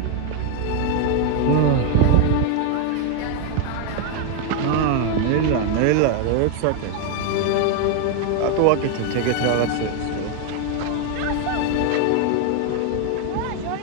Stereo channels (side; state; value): both; different; correlation 0.01